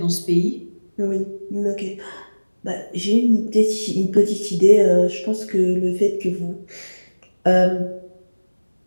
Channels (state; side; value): inverted; both; correlation -1.00